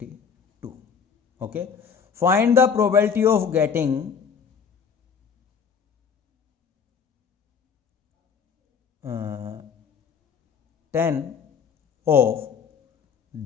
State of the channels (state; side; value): quieter; right; 6.6 dB